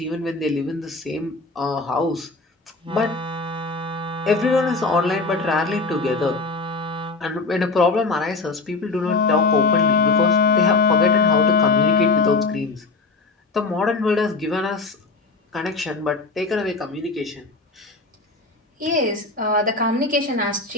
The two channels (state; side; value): quieter; right; 3.8 dB